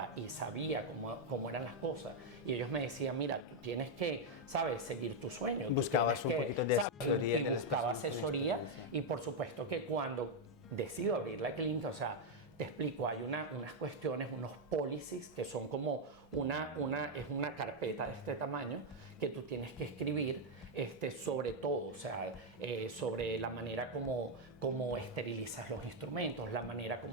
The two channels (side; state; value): both; normal; correlation 0.01